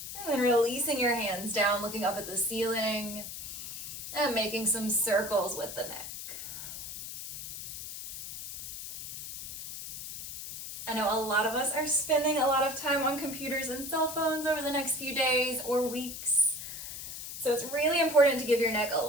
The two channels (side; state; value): left; noise; hiss, 9 dB below the sound